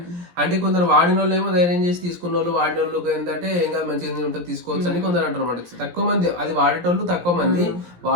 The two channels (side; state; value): left; late; 17 ms